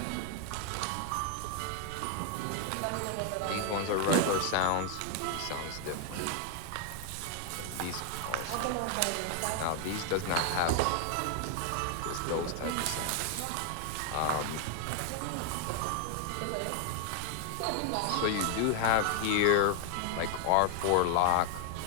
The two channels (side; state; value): both; different; correlation 0.00